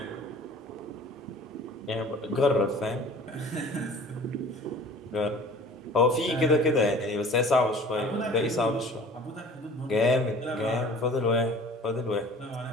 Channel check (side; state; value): both; normal; correlation 0.46